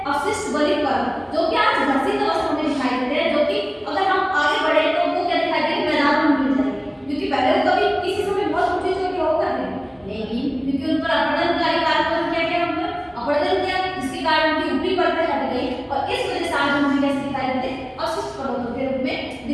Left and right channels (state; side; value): identical; both; correlation 1.00